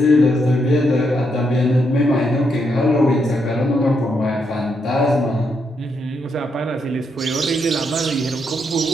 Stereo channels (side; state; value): both; normal; correlation 0.79